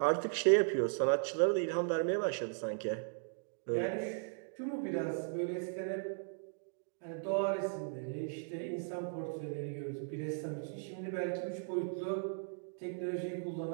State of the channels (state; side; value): silent; left; digital silence